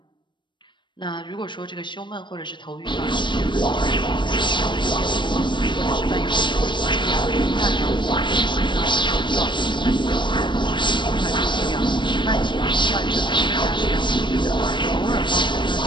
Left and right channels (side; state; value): right; late; 0.23 ms